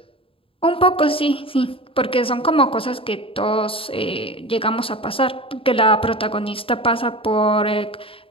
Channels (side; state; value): right; late; 0.26 ms